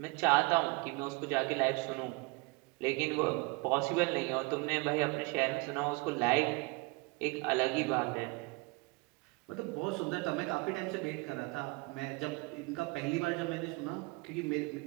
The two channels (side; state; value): left; quieter; 27.1 dB